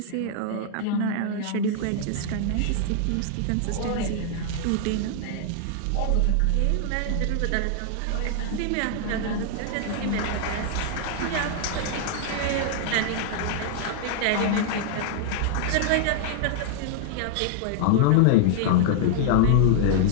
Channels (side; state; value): both; different; correlation -0.01